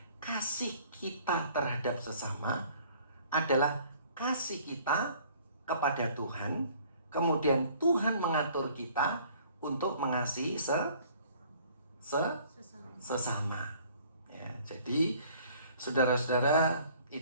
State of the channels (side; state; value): both; inverted; correlation -0.55